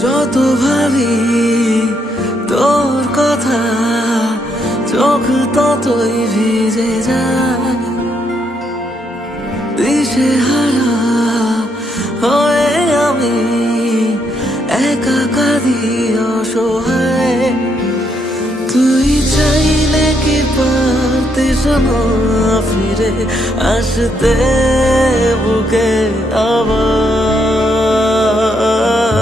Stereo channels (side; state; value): both; normal; correlation 0.76